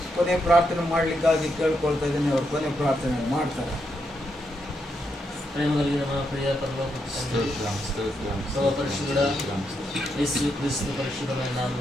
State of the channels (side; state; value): both; normal; correlation 0.81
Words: ಕೊನೆ ಪ್ರಾರ್ಥನೆ ಮಾಡಲಿಕ್ಕಾಗಿ ಕೇಳ್ಕೊಳ್ತಾ ಇದ್ದೀನಿ. ಅವರು ಕೊನೆ ಪ್ರಾರ್ಥನೆ ಮಾಡ್ತಾರೆ. ಪ್ರಿಯ ಪರಲೋಕ ತಂದೆ, ಸರ್ವ ಪರಿಶುದ್ಧ ಯೇಸು ಕ್ರಿಸ್ತ ಪರಿಶುದ್ಧమైన